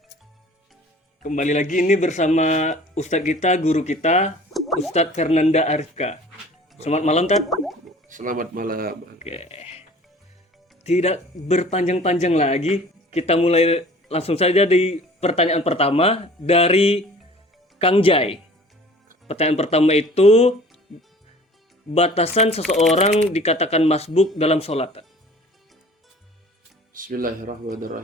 Kembali lagi ini bersama Ustadz kita, guru kita, Ustadz Fernanda Arifka. Selamat malam, Tat. selamat malam. Oke. Tidak berpanjang-panjang lagi, kita mulai langsung saja di pertanyaan pertama dari Kang Jai. Pertanyaan pertama itu, batasan seseorang dikatakan masbuk dalam sholat.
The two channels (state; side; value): normal; both; correlation 0.47